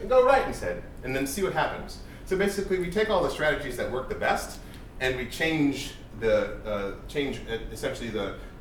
go right instead, and then see what happens. So basically, we take all the strategies that work the best, and we change essentially the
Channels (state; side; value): identical; both; correlation 1.00